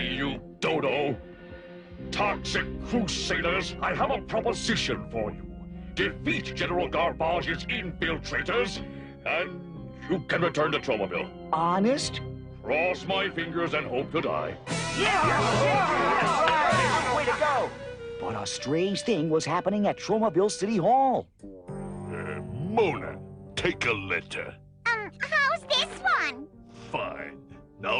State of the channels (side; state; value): both; identical; correlation 1.00